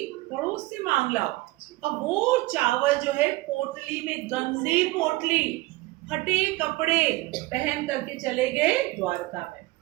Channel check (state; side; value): quieter; left; 20.3 dB